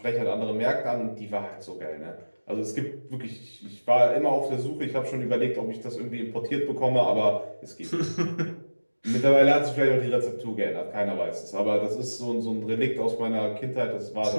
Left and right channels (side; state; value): both; inverted; correlation -1.00